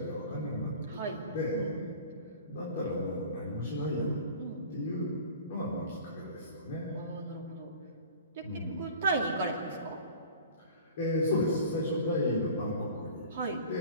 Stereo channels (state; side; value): inverted; both; correlation -0.42